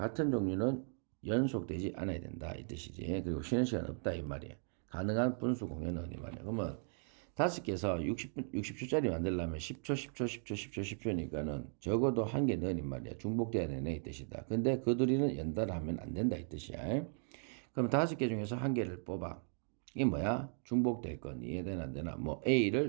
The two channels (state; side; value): silent; left; 53 dB below the other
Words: 종류는 연속되지 않아야 된다 이 뜻이지. 그리고 쉬는 시간 없다 이 말이야. 가능한 분수 공연은 이 말이야. 그러면 5개에서 60초짜리 만들려면 10초, 10초, 10초, 10초, 10초니까는 적어도 한 개 넣으니 말이야. 중복돼야 되네 이 뜻이다. 근데 그 둘이는 연달아 하면 안 된다 이 뜻이야. 그럼 5개 중에서 한 개를 뽑아. 이게 뭐야? 중복될 건 이해되나 안 되나? 뭐